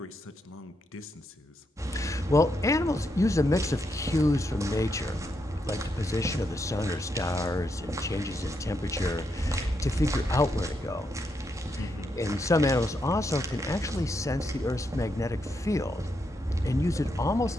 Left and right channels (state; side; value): normal; both; correlation 0.81